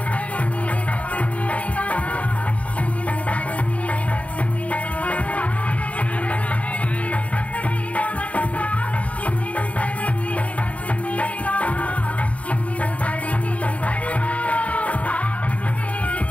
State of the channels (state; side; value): late; right; 0.066 ms